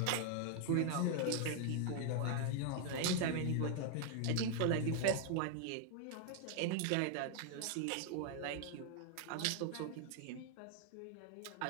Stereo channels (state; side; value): different; both; correlation 0.00